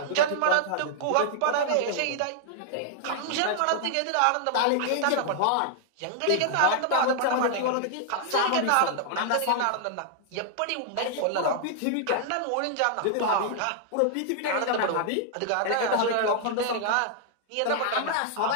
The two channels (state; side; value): different; both; correlation -0.01